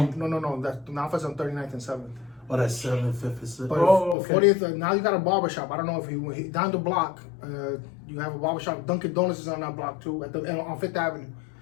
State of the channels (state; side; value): drops out; right; at 4.2 s